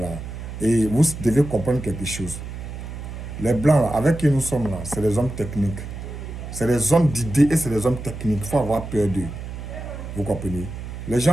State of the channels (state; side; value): noise; right; hum, 9 dB below the sound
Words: Et vous devez comprendre quelque chose. Les Blancs, là, avec qui nous sommes là, c'est des hommes techniques. C'est des hommes d'idées et c'est des hommes techniques. Il faut avoir peur d'eux. Vous comprenez? Les